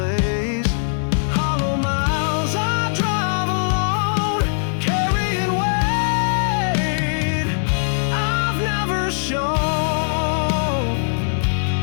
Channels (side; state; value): right; silent; digital silence